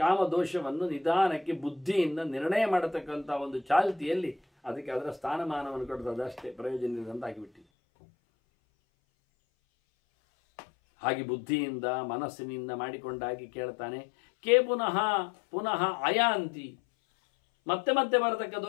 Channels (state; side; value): drops out; right; at 7.6 s